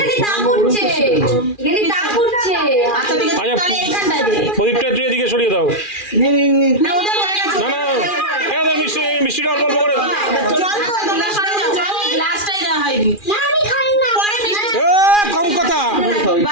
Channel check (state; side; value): late; right; 2.4 ms